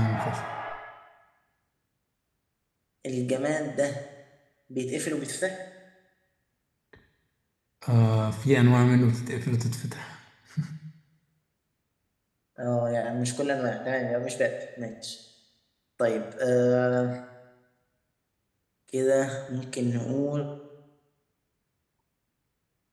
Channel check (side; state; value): both; identical; correlation 1.00